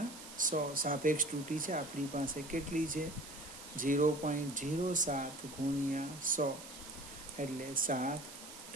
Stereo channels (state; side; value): noise; right; hiss, 14 dB below the sound